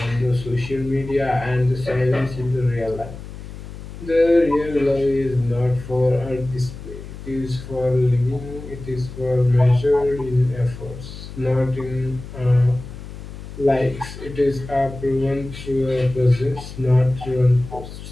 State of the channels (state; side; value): noise; left; hum, 12 dB below the sound